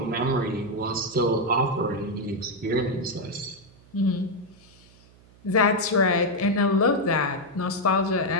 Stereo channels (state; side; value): noise; right; hum, 26 dB below the sound